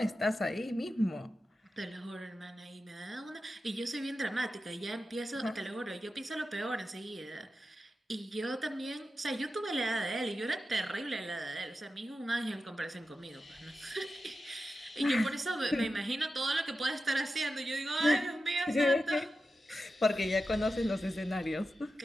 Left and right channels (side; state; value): both; normal; correlation 0.91